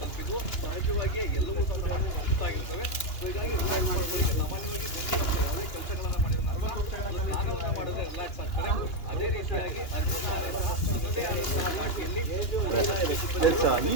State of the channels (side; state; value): right; late; 2.9 ms